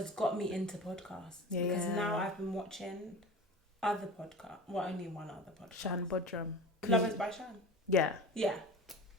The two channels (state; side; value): normal; both; correlation 0.33